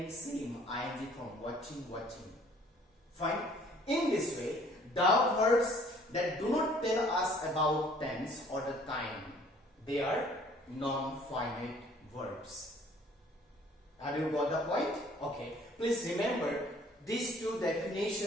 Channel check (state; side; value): normal; both; correlation 0.56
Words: same, ing form, watching. Fine. In this way, the verbs that do not tell us about tense or the time, they are non-finite verbs. Have you got the point? Okay. Please remember these two